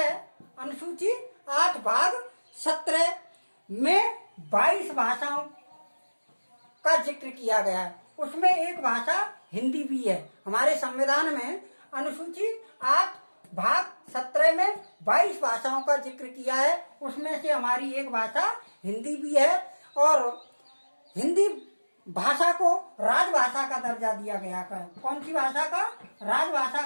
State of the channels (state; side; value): inverted; both; correlation -1.00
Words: अनुसूची 8 भाग 17 में 22 भाषाओं का जिक्र किया गया है। उसमें एक भाषा हिंदी भी है। हमारे संविधान में अनुसूची 8 भाग 17 में 22 भाषाओं का जिक्र किया है, उसमें से हमारी एक भाषा हिंदी भी है। और हिंदी भाषा को राजभाषा का दर्जा दिया गया है। कौन सी भाषा का, राजभाषा